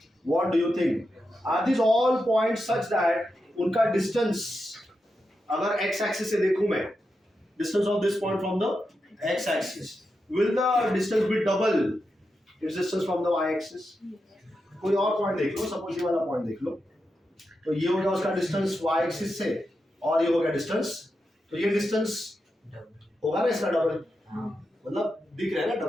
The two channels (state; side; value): normal; both; correlation 0.88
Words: what do you think, are this all points such that उनका डिस्टेंस, अगर एक्स एक्सिस से देखूं मैं, distance of this point from the x axis, will the distance be double its distance from the Y axis? कोई और point देख लो, suppose ये वाला पॉइंट देख लो, तो ये हो गया उसका डिस्टेंस y एक्सिस से और ये हो गया डिस्टेंस, तो ये डिस्टेंस होगा ना इसका डबल, मतलब दिख रहा है ना